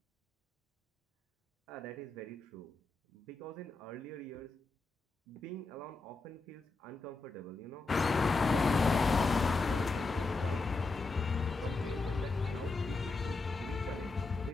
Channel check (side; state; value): right; quieter; 3.6 dB